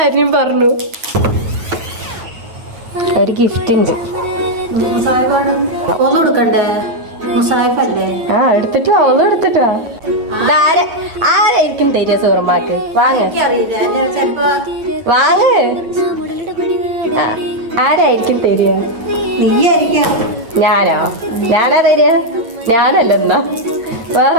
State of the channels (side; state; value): left; late; 8.8 ms